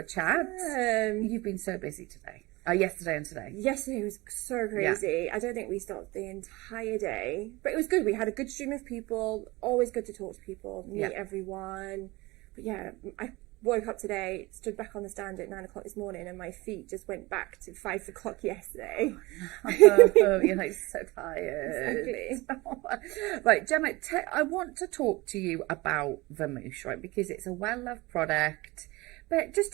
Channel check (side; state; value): left; quieter; 22.0 dB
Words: chat. You've been so busy today. Yesterday and today. Yesterday was so crazy. Yeah. I don't think we stopped the entire day, but it was good. We had a good stream of people. Always good to talk to people, meet everyone. But yeah, I woke up today, stood back on the stand at 9 o'clock this morning, and my feet just went back to 5 o'clock yesterday. You're like so tired. Exactly. Right, Gemma, I want to talk to you about Vamoosh, right? Because it's a well-loved product. But just